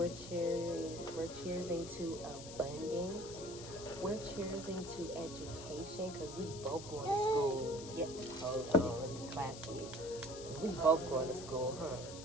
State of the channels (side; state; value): left; noise; hiss, 12 dB below the sound